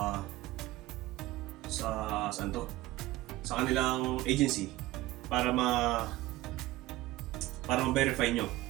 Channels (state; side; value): quieter; left; 17.4 dB